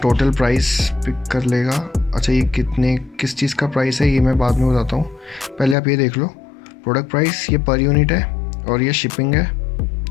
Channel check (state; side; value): drops out; right; at 5.8 s